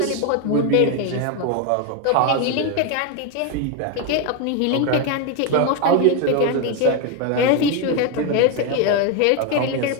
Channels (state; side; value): different; both; correlation 0.02